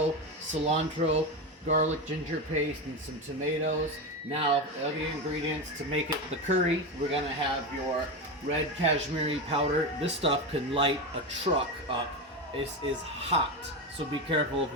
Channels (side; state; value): both; normal; correlation 0.17